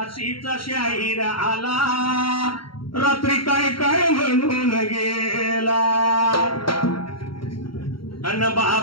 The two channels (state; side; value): late; right; 0.74 ms